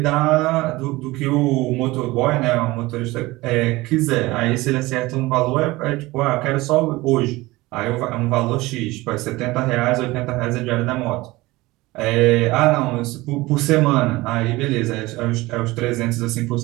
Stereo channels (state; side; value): quieter; left; 20.3 dB